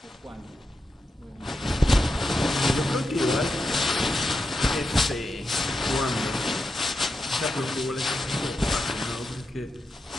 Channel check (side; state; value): both; normal; correlation 0.87